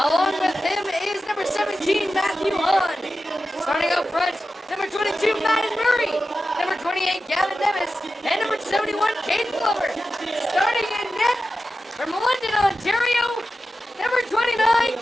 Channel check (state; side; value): normal; both; correlation 0.93